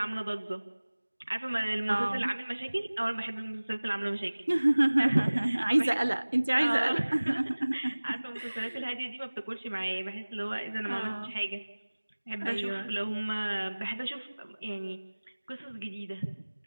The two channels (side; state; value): both; inverted; correlation -1.00